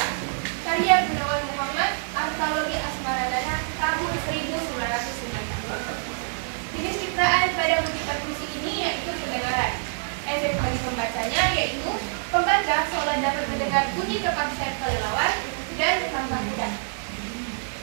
Karya Gunawan Muhammad, antologi Asmarandana tahun 1990. Jenis citraan pada kutipan puisi ini yaitu pendengaran. Efek bagi pembacanya yaitu pembaca seolah dapat mendengar bunyi kepak sayap kelelawar dan langkah kuda.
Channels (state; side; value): silent; left; digital silence